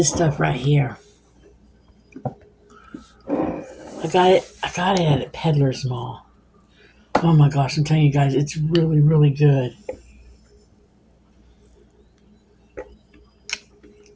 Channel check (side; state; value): both; identical; correlation 1.00